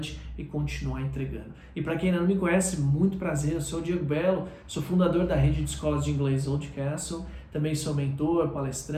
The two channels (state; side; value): identical; both; correlation 1.00